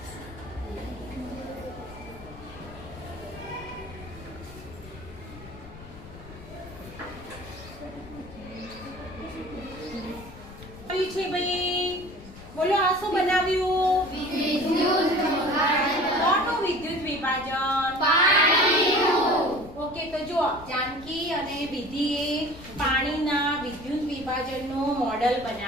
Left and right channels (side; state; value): left; noise; rumble, 17 dB below the sound